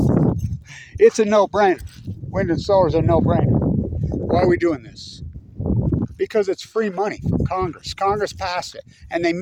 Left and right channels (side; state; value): both; identical; correlation 1.00